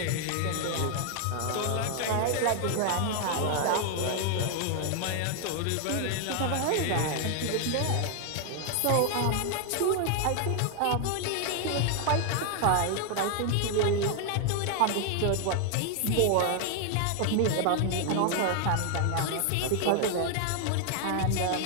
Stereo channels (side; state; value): both; different; correlation 0.00